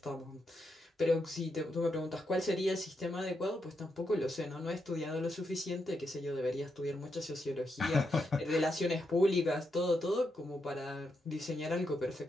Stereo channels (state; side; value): normal; both; correlation 0.83